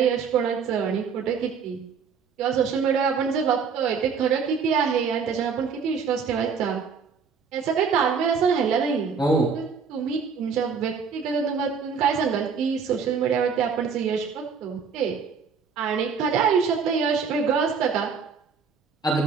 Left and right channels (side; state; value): left; quieter; 6.0 dB